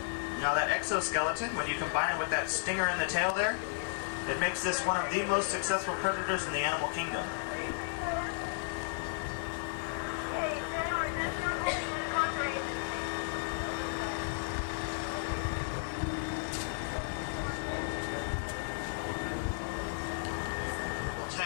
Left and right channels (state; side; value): silent; right; 55 dB below the other